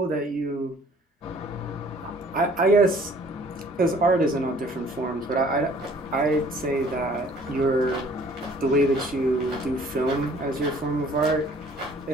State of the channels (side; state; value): both; normal; correlation 0.55